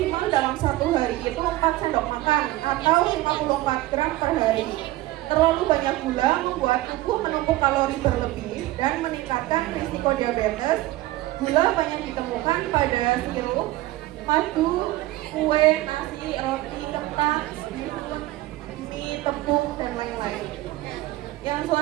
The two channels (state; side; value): quieter; left; 17.3 dB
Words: dalam satu hari itu 4 sendok makan atau 54 gram per hari. Terlalu banyak gula membuat tubuh menumpuk kalori berlebih dan meningkatkan risiko diabetes. Gula banyak ditemukan pada sirup, madu, kue, nasi, roti, kentang, mie, tepung, dan lain-lain. Yang